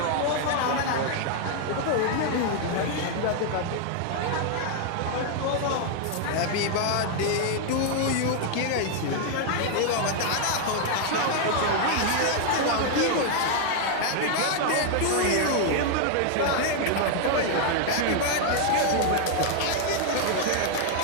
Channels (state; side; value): different; both; correlation 0.00